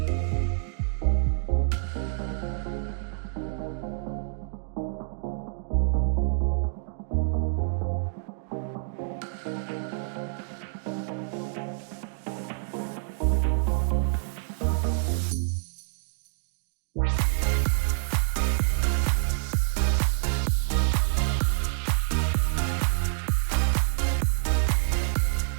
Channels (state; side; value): silent; left; digital silence